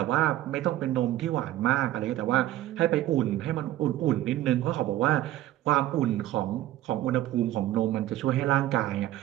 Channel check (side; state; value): left; quieter; 14.3 dB